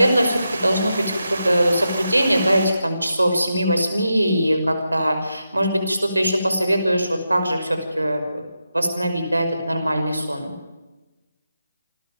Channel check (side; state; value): both; inverted; correlation -0.87